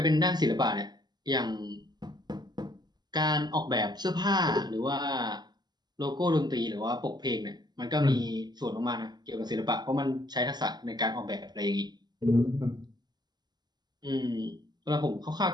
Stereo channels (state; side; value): late; left; 0.20 ms